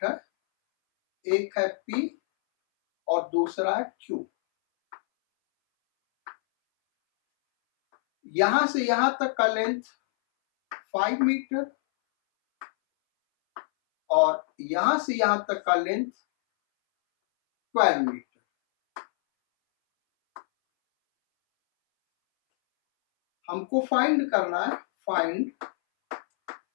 है, एक है P और दूसरा है Q। यहां से यहां तक का लेंथ 5 मीटर और यहां से यहां तक का लेंथ 12 मीटर। हमको फाइंड करना है, find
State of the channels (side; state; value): right; silent; 61 dB below the other